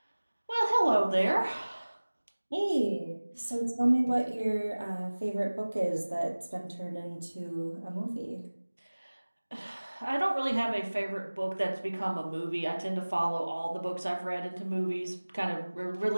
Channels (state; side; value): inverted; both; correlation -1.00